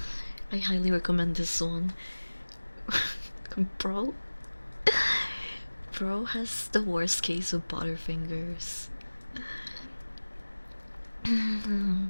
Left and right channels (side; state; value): both; inverted; correlation -1.00